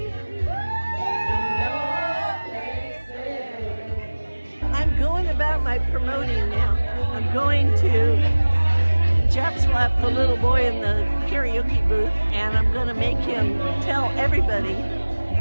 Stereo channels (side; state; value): both; inverted; correlation -1.00